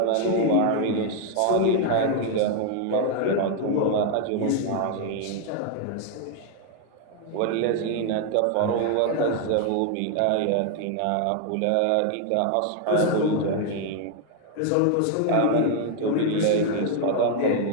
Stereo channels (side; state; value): both; different; correlation 0.00